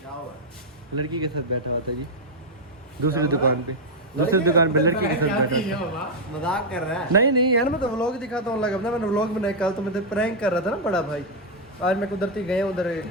लड़की के साथ बैठा हुआ था जी दूसरी दुकान पे, दूसरी दुकान पे लड़की के साथ बैठा था। मजाक कर रहा है? नहीं यार, मैं तो व्लॉग दिखाता हूँ, लगा मैंने व्लॉग बनाया कल, तो मैं प्रैंक कर रहा था ना बड़ा भाई। आज मैं कुदरती गया उधर,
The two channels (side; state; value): both; normal; correlation -0.02